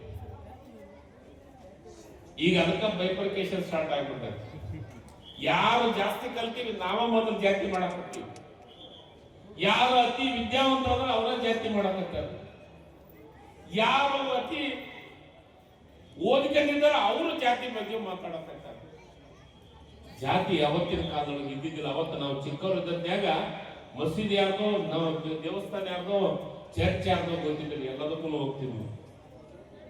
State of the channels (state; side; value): identical; both; correlation 1.00